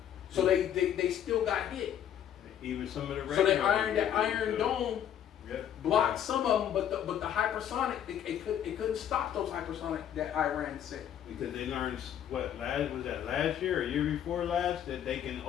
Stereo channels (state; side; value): quieter; right; 9.9 dB